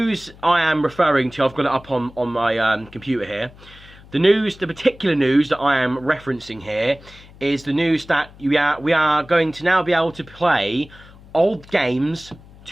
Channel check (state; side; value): noise; left; hum, 22 dB below the sound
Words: I am referring to, I've got it up on my computer here. The particular news that I am referencing here is the news that we are going to now be able to play old games